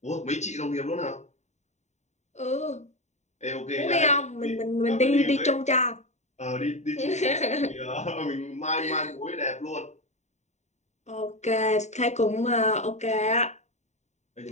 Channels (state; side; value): late; right; 0.34 ms